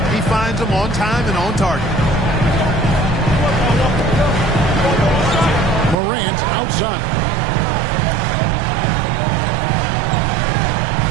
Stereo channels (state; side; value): drops out; left; at 6.0 s